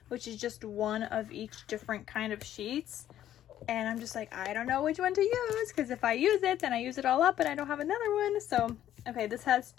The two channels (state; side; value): quieter; right; 11.8 dB